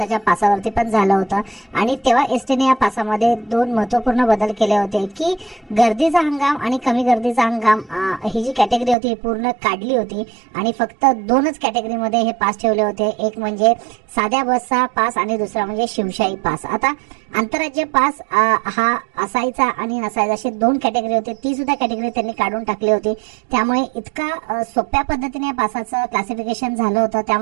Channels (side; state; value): left; drops out; at 9.0 s